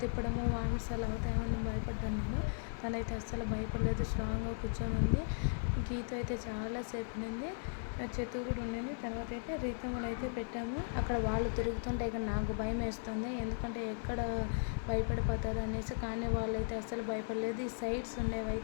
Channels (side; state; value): right; silent; 53 dB below the other